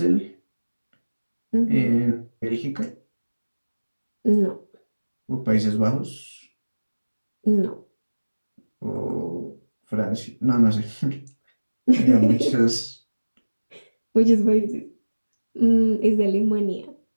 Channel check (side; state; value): both; inverted; correlation -1.00